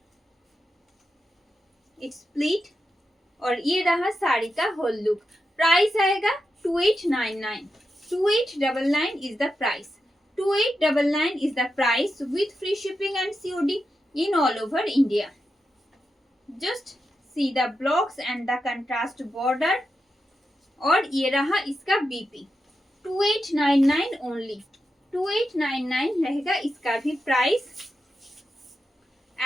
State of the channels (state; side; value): normal; both; correlation 0.88